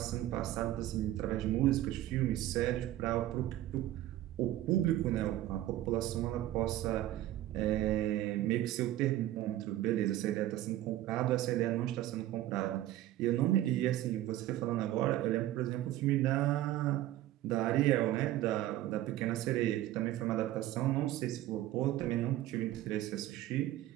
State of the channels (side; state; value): left; quieter; 14.2 dB